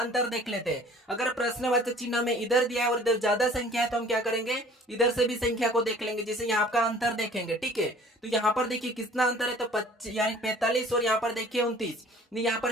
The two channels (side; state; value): both; normal; correlation 0.50